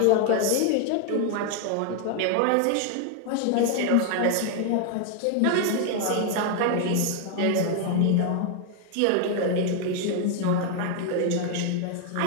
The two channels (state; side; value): different; both; correlation 0.00